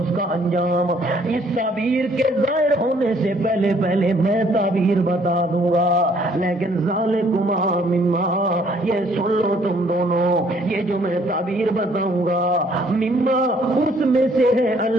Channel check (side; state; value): both; normal; correlation 0.63